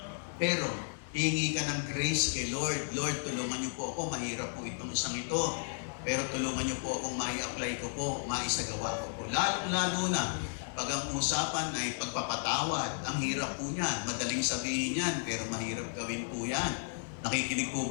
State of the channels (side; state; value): right; silent; digital silence